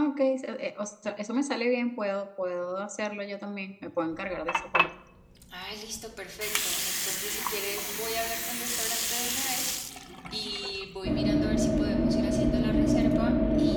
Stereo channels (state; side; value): identical; both; correlation 1.00